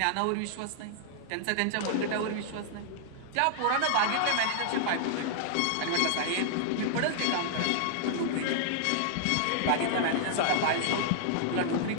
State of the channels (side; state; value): both; different; correlation -0.01